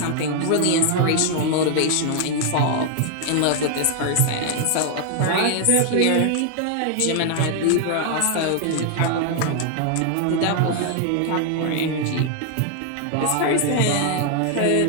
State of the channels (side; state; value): both; different; correlation 0.00